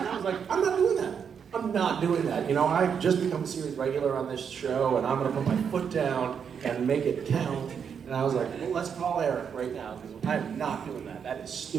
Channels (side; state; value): left; quieter; 7.1 dB